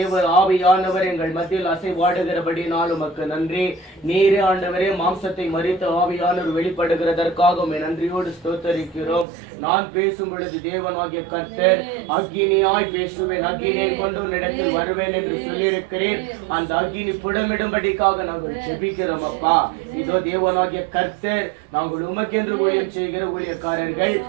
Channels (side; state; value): left; drops out; at 9.2 s